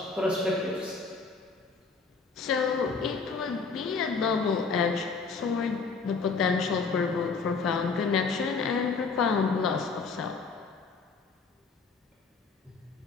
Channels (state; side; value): quieter; right; 4.7 dB